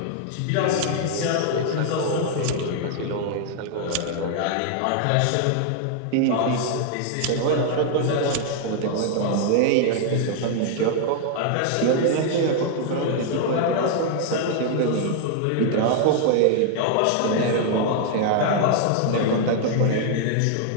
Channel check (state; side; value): different; both; correlation 0.00